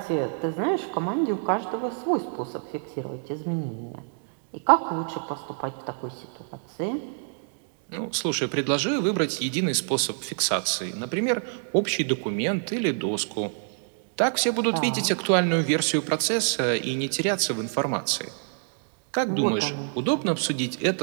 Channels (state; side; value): silent; left; digital silence